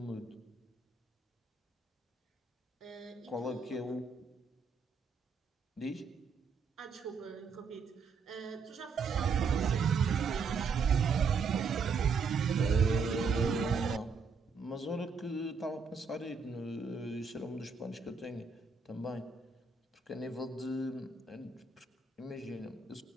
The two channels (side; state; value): left; quieter; 4.9 dB